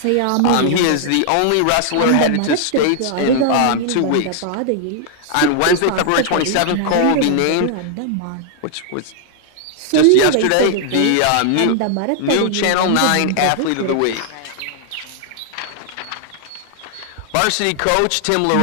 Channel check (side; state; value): both; different; correlation -0.01